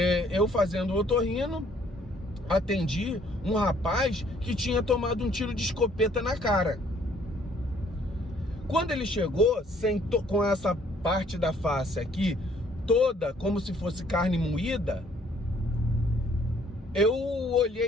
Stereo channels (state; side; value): normal; both; correlation 0.62